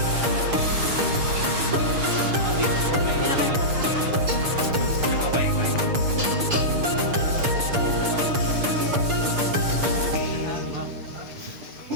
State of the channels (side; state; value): left; late; 6.8 ms